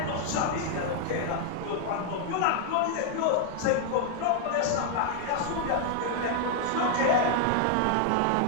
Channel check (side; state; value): both; different; correlation 0.00